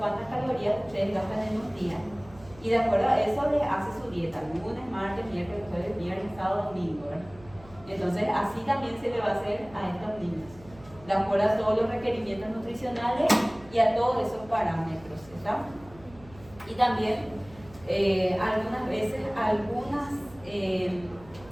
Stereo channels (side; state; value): right; noise; hum, 22 dB below the sound